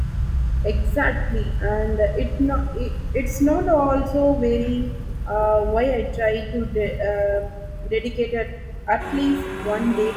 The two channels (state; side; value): identical; both; correlation 1.00